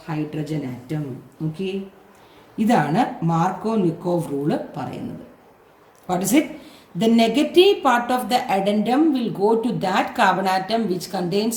hydrogen atom. Okay. ഇതാണ് മാർക്കോ-നിക്കോവ് റൂള് പറയുന്നത്. What is it? The negative part of the addendum will go to that carbon atom which contains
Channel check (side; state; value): both; identical; correlation 1.00